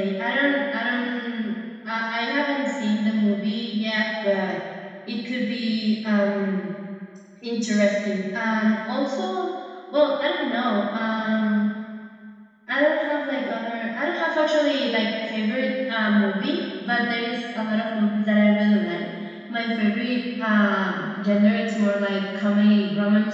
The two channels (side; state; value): both; identical; correlation 1.00